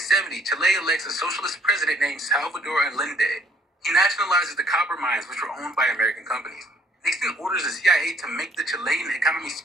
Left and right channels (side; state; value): both; normal; correlation 0.61